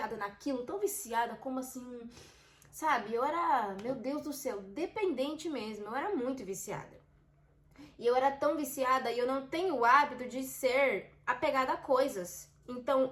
naquilo, tão viciada, como assim, sabe? Eu era, meu Deus do céu, dependente mesmo. Eu era muito viciada. E eu era tão viciada e eu não tenho o hábito de ser apegada a coisas.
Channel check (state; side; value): identical; both; correlation 1.00